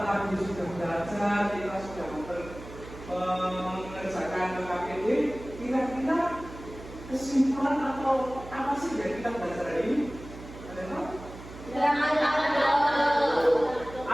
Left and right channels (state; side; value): noise; right; hum, 15 dB below the sound